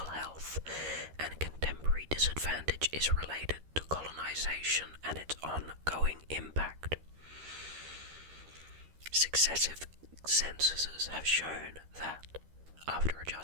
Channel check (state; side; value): late; left; 13 ms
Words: health, and contemporary disadvantage is related to colonization and its ongoing impact. Successive censuses have shown that, after